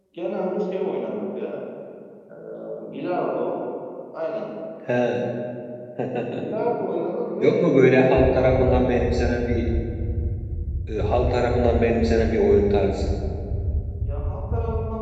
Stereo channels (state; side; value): identical; both; correlation 1.00